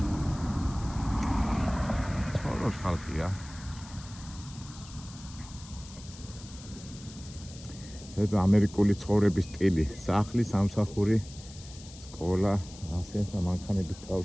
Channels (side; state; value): left; noise; hiss, 18 dB below the sound